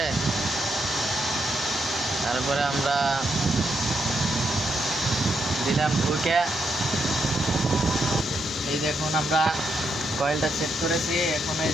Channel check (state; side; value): normal; both; correlation 0.80